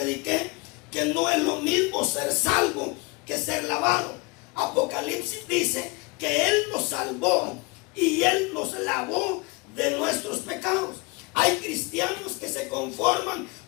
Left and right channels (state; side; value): quieter; right; 26.4 dB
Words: que no es lo mismo ser salvo que ser lavado. Apocalipsis dice que Él nos salvó y Él nos lavó de nuestros pecados. Hay cristianos que se conforman